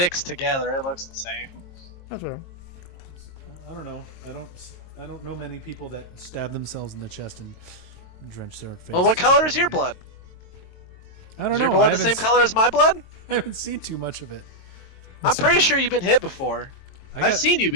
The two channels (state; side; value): late; right; 22 ms